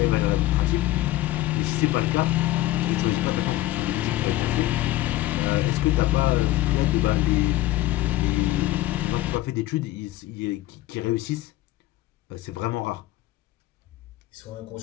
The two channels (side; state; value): right; quieter; 16.2 dB